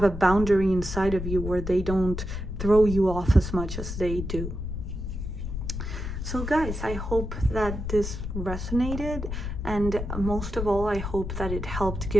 a boundary inside of you where they don't throw you off as much as they do. So guys, I hope that this resonated, and most of all, I hope that it helped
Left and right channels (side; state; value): left; noise; rumble, 5 dB below the sound